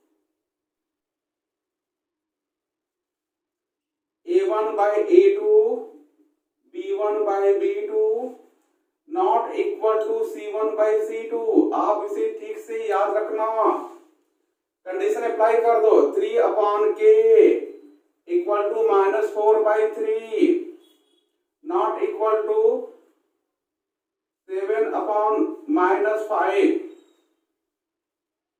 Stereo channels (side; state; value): both; identical; correlation 1.00